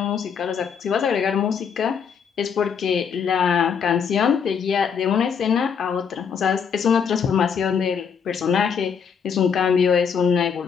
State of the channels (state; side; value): quieter; right; 6.8 dB